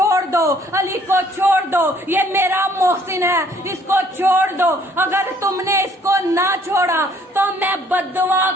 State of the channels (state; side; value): normal; both; correlation 0.61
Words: दो, अली को छोड़ दो, ये मेरा मोहसिन है, इसको छोड़ दो। अगर तुमने इसको ना छोड़ा तो मैं बद्दुआ